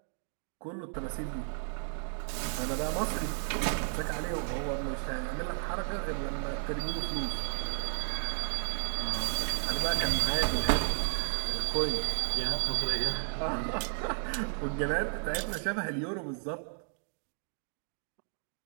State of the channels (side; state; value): left; silent; 56 dB below the other